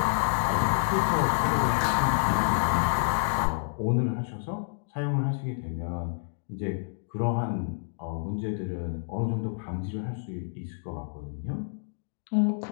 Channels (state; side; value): silent; right; digital silence